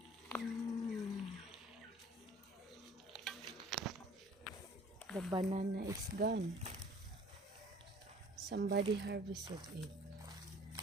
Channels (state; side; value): normal; both; correlation 0.51